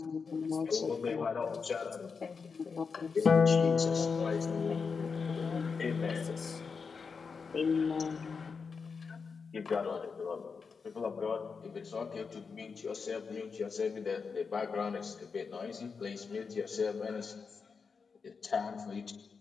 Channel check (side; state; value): right; quieter; 5.3 dB